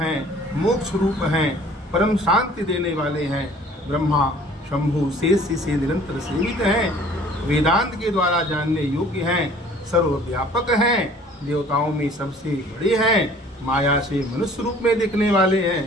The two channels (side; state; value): both; normal; correlation 0.52